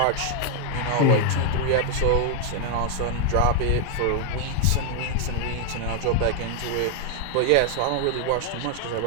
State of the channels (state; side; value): different; both; correlation 0.00